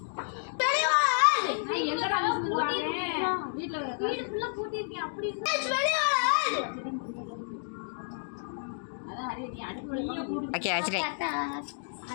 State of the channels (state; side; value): silent; right; digital silence